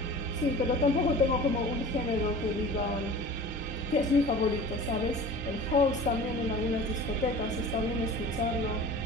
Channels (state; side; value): normal; both; correlation 0.40